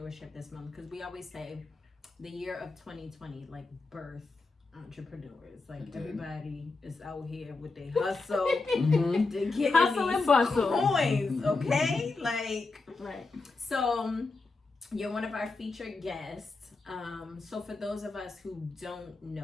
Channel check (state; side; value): quieter; right; 3.7 dB